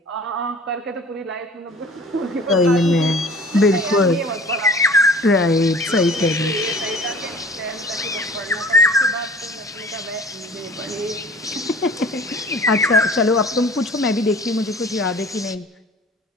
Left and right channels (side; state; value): both; normal; correlation 0.45